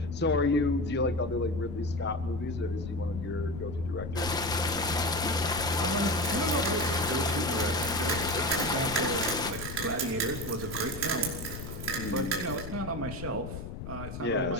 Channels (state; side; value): noise; left; rumble, 8 dB below the sound